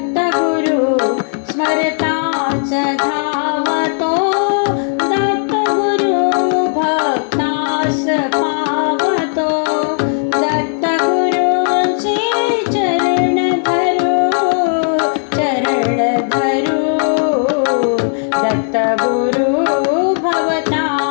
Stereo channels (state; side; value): silent; right; digital silence